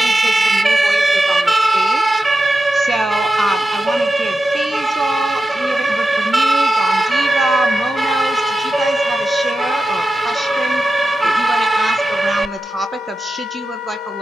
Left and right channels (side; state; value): both; normal; correlation 0.91